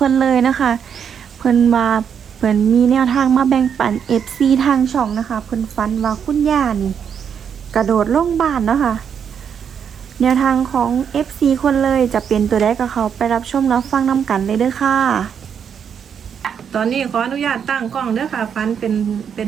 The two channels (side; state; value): left; quieter; 7.6 dB